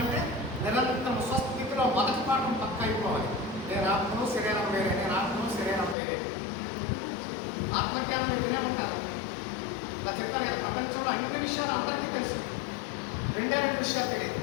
నిరంతరం స్వస్థితిలో మొదటి పాఠం పక్క అయిపోవాలి. నేను ఆత్మను శరీరం వేరే, నేను ఆత్మను శరీరం వేరే. ఆత్మజ్ఞానం మీరు వినే ఉంటారు. ఇలా చెప్పాను కదా, ప్రపంచంలో అన్ని విషయాలు అందరికీ తెలుసు, 2 విషయాలు తెలియదు.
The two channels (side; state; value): right; drops out; at 6.0 s